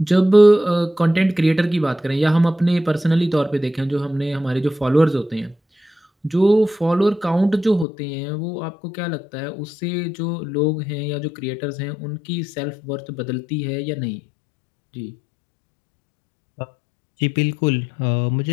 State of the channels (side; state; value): right; drops out; at 7.9 s